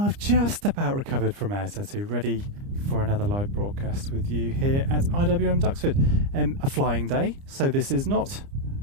just about recovered from air tattoo, ready for another live broadcast with you here at IWM Duxford. A flying day, so this is not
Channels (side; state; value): left; late; 30 ms